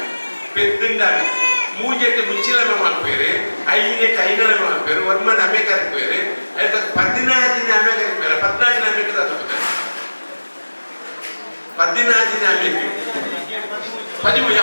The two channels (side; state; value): both; inverted; correlation -1.00